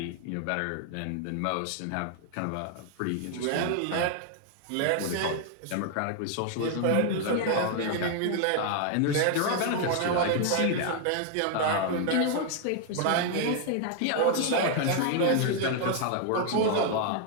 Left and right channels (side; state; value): both; different; correlation 0.00